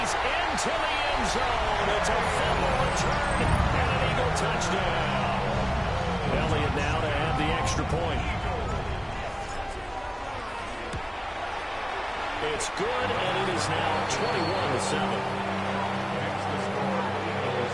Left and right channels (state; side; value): identical; both; correlation 1.00